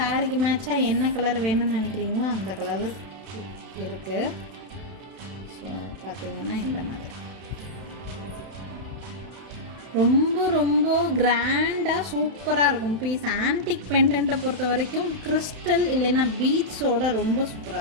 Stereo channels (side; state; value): left; late; 31 ms